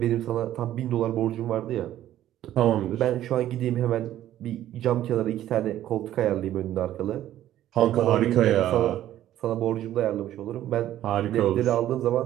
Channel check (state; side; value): quieter; left; 12.7 dB